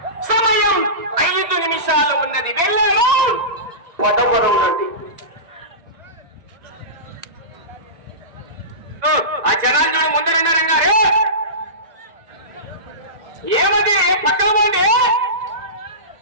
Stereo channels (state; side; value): late; left; 1.9 ms